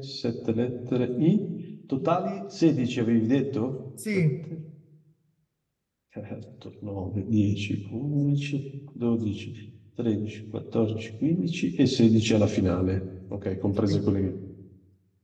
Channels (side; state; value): both; identical; correlation 1.00